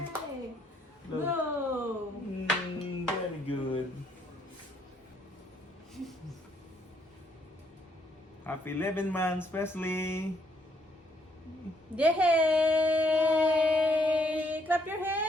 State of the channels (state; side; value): normal; both; correlation 0.70